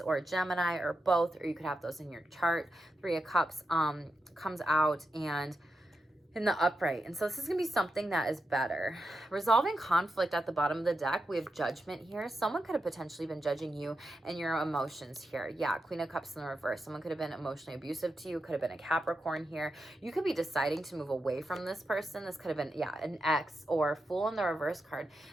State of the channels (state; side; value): normal; both; correlation 0.87